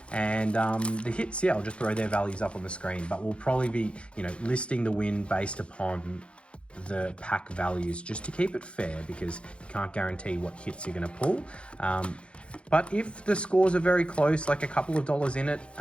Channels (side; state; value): right; late; 0.058 ms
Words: And the hits, yeah, I'll just throw their values up on the screen, but we'll probably be, you know, listing the win based upon the pack values just to keep it fair, because you can't guarantee what hits you're going to pull. But if the scores are very close, like a couple of dollars in it,